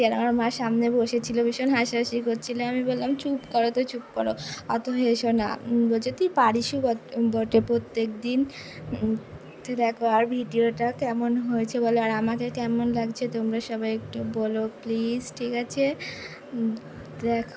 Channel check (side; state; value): both; identical; correlation 1.00